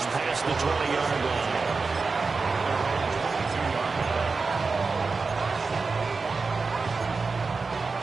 past the 20-yard line.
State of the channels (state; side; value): quieter; left; 4.3 dB